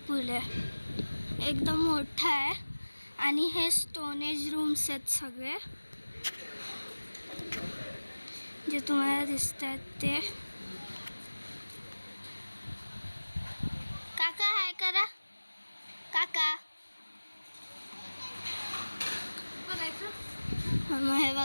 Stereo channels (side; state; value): both; inverted; correlation -1.00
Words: पूल आहे. एकदम मोठा आहे. आणि हे स्टोनेज रूम्स आहेत सगळे जे तुम्हाला दिसत आहेत ते. काका हाय करा. काका मग हे